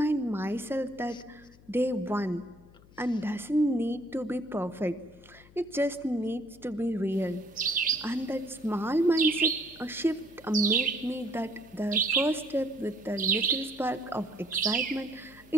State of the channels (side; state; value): left; noise; hum, 24 dB below the sound